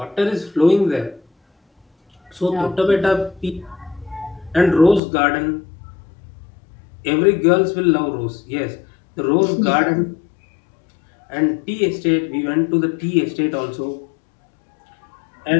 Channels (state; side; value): drops out; right; at 5.0 s